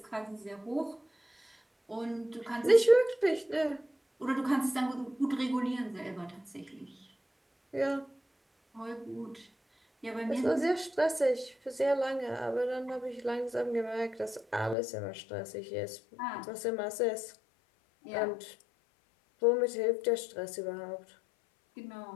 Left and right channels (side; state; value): right; drops out; at 14.8 s